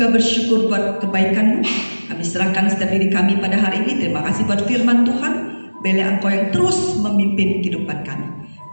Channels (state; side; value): inverted; both; correlation -1.00